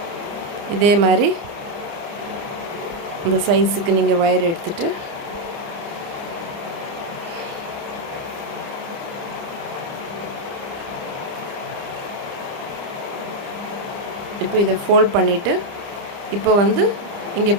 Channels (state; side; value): late; left; 30 ms